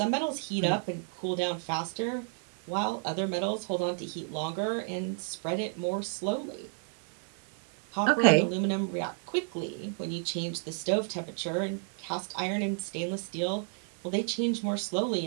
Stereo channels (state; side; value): silent; left; 57 dB below the other